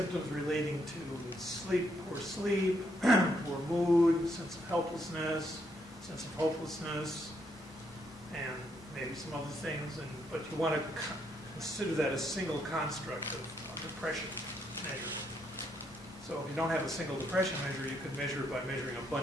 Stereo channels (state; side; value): normal; both; correlation 0.75